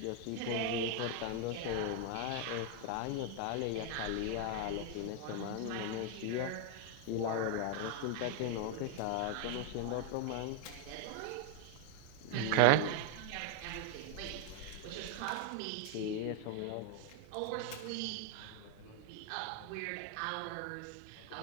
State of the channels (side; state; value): both; different; correlation 0.00